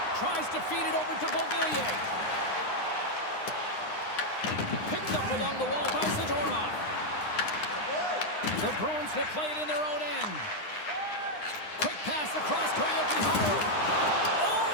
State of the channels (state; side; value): late; right; 9.8 ms